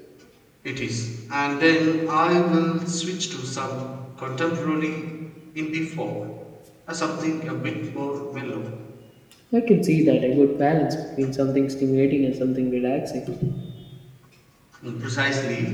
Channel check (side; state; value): both; identical; correlation 1.00